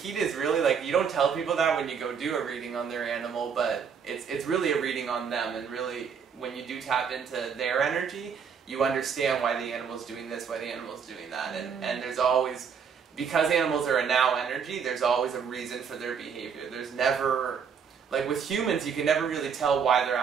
is really, like, you don't tell people that when you go do a reading on their animal, but it's really a reading on them, and really, when you do tap into their energy, you understand why the animal's doing this, why the animal's doing that, and there's always, because animals are a now energy, there's always a reason for their behavior. There's never... Like with humans, you can never really tell why they're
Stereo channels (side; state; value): left; quieter; 6.7 dB